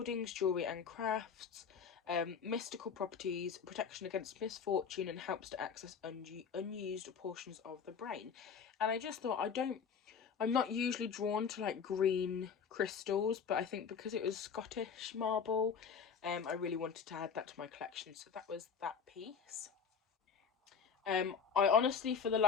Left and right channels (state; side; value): quieter; right; 6.5 dB